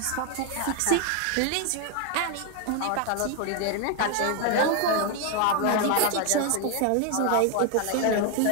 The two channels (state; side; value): different; both; correlation 0.01